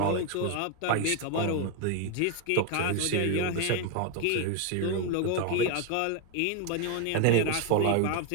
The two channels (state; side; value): different; both; correlation 0.01